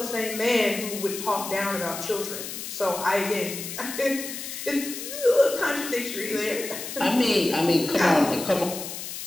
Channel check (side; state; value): left; noise; hiss, 8 dB below the sound